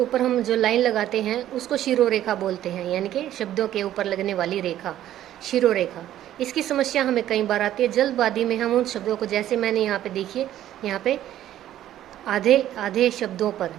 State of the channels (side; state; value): left; quieter; 12.4 dB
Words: हम जो लाइन लगाते हैं उसको शिरोरेखा बोलते हैं, यानी कि शब्दों के ऊपर लगने वाली रेखा, शिरोरेखा। इसकी समस्या हमें कई बार आती है। जल्दबाजी में हम उन शब्दों को, जैसे मैंने यहाँ पे देखिए, यहाँ पे आधे आधे शब्दों पर